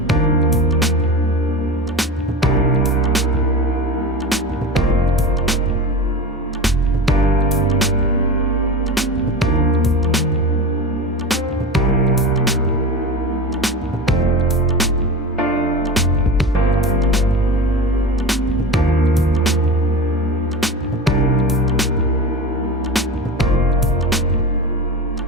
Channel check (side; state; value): both; normal; correlation 0.28